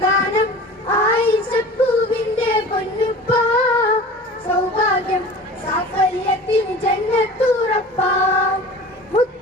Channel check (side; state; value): both; normal; correlation 0.39